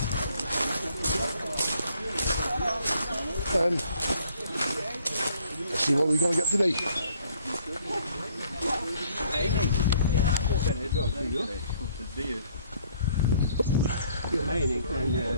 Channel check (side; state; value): both; inverted; correlation -0.63